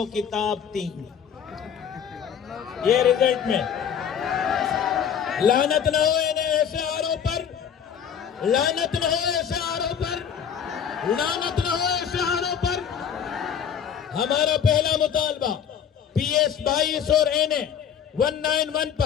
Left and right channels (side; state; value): right; quieter; 8.2 dB